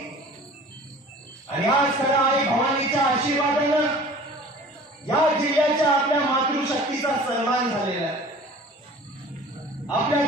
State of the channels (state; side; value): normal; both; correlation 0.45